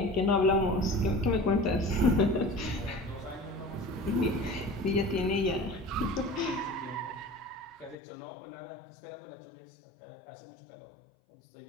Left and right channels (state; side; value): drops out; right; at 8.0 s